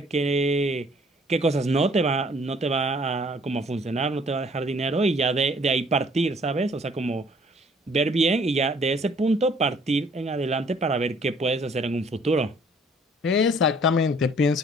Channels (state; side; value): normal; both; correlation 0.58